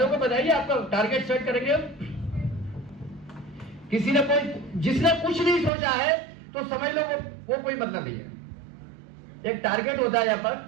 होकर बताइए, आपका टारगेट सेट करेंगे। किसी ने कोई, जिसने कुछ नहीं सोचा है तो समझ लो वो कोई मतलब नहीं है। एक टारगेट होता है, यहां पर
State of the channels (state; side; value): drops out; left; at 5.7 s